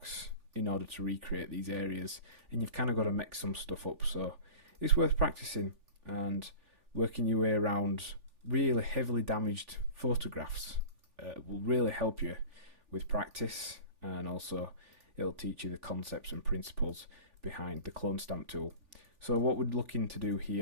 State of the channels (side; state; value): left; late; 3.5 ms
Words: in order to recreate these areas, and you've kind of got to mix some stuff up. So it's worth practicing and working your way around really heavily damaged photographs. Will really help you with practice, and also it'll teach you the concepts and principles behind the clone stamp tool. So what we're looking to do